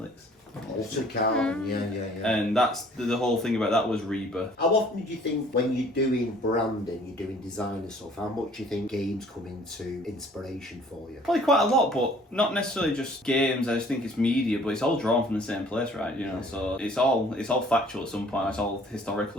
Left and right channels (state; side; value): normal; both; correlation 0.55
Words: Altered Carbon, yeah. And that's the whole thing about that was rebirth. How often do you think when you're doing branding, you're doing design and stuff, how much do you think games come into inspiration for you? Probably quite a lot, but not necessarily just games. I just think it's media, but it's all drawn from the same place, right? You know, so it's all factual at some point. It's all